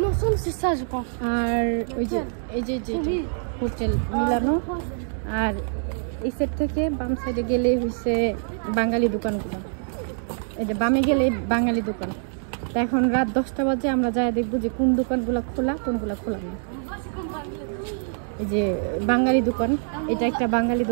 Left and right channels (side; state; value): left; silent; digital silence